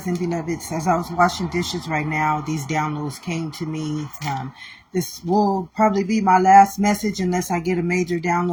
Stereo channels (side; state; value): both; identical; correlation 1.00